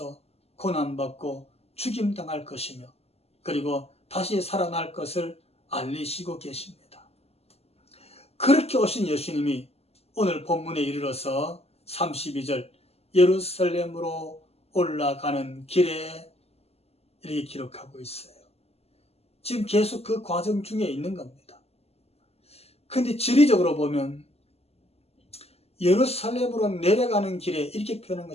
고난받고 죽임당할 것이며 그리고 다시 살아날 것을 알리시고 계십니다. 그렇게 오신 예수님이 오늘 본문에 이르러서 32절 예루살렘으로 올라가는 길에 이렇게 기록하고 있어요. 지금 계속 그 과정 중에 있는 겁니다. 근데 지리적으로 보면 예루살렘으로 내려가는 길에 이렇게 표현한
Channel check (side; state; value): right; late; 0.29 ms